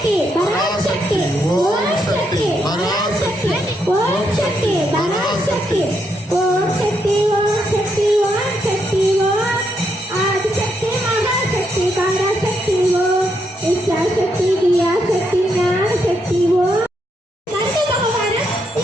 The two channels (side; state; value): both; normal; correlation 0.78